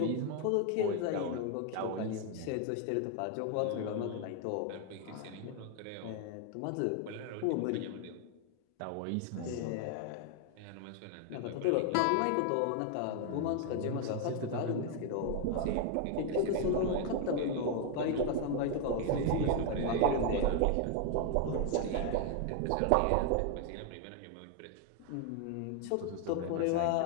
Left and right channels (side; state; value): both; different; correlation 0.00